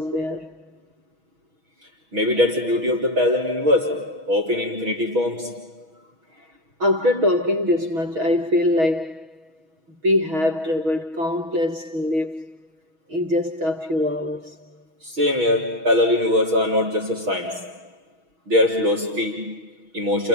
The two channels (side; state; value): left; late; 6.2 ms